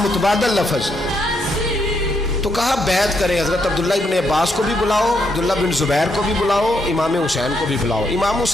لفظ. تو کہا بیعت کرے. حضرت عبداللہ ابن عباس کو بھی بلاؤ، عبداللہ بن زبیر کو بھی بلاؤ، امام حسین کو بھی بلاؤ. امام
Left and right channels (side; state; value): both; normal; correlation 0.77